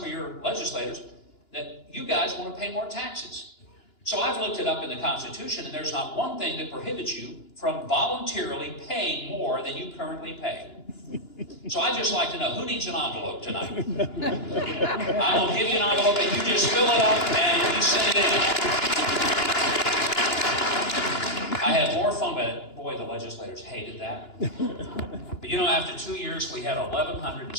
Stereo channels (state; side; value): late; right; 2.9 ms